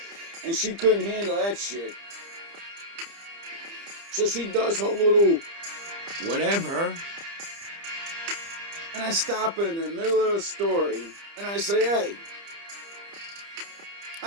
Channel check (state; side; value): late; left; 30 ms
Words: And she couldn't handle that shit. So she does her little whatever. And I stop her in the middle of the story and I say, hey,